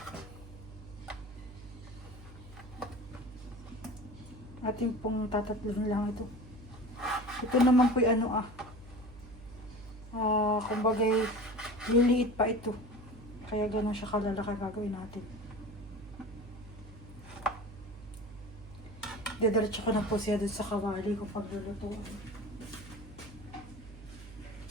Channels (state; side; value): noise; right; hum, 16 dB below the sound